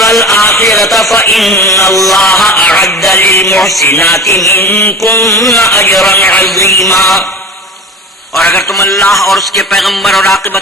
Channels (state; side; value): normal; both; correlation 0.34